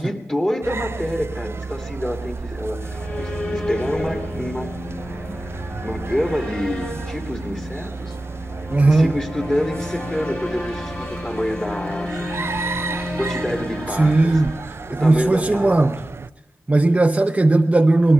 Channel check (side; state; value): both; normal; correlation 0.95